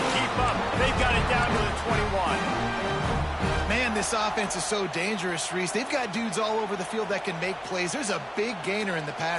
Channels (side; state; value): both; identical; correlation 1.00